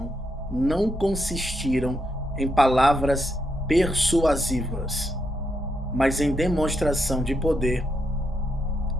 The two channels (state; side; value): normal; both; correlation 0.81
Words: não consistiram em palavras persuasivas, mas em demonstração de poder